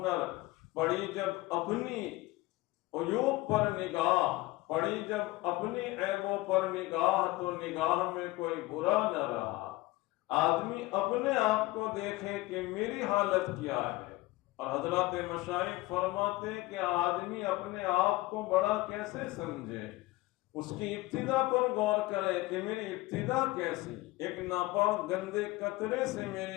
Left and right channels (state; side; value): quieter; right; 19.7 dB